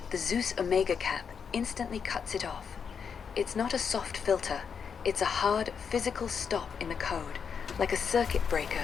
the Zeus Omega cap instantly cuts it off. It's not a soft filter, it's a hard, physical stop in the code, like a circuit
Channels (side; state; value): right; quieter; 6.6 dB